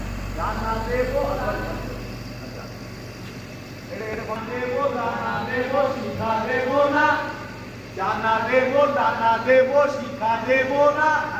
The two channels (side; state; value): both; identical; correlation 1.00